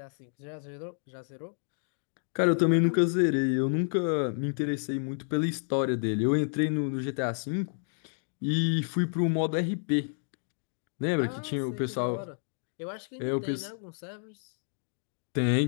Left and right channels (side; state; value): right; silent; digital silence